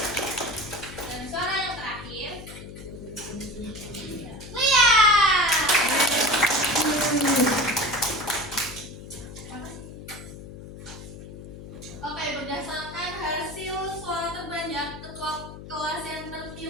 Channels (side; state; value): left; noise; hum, 13 dB below the sound